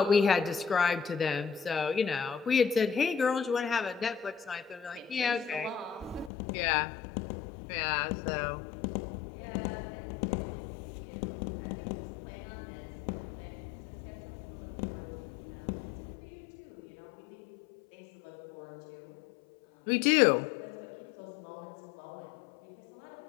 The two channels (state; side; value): drops out; right; at 6.3 s